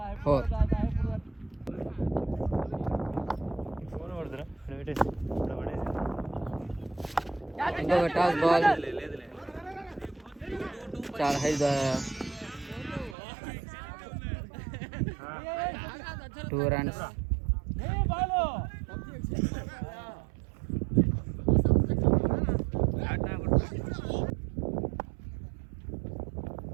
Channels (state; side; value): drops out; left; at 13.2 s